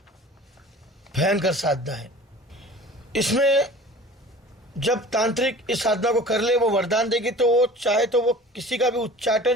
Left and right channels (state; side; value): normal; both; correlation 0.42